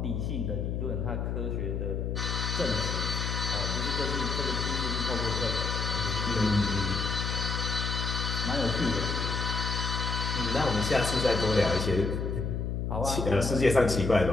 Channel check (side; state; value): left; noise; hum, 1 dB below the sound